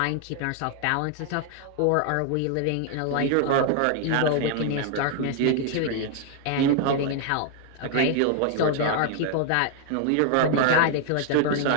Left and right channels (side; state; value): both; different; correlation 0.00